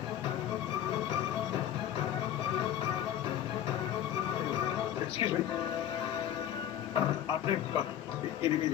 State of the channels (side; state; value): right; quieter; 10.8 dB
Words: एक्सक्यूज मी, आपने इन्हें नहीं